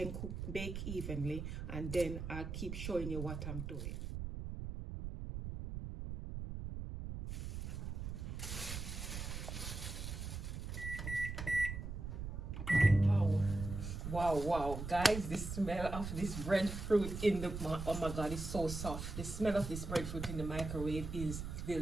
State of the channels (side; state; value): right; noise; rumble, 6 dB below the sound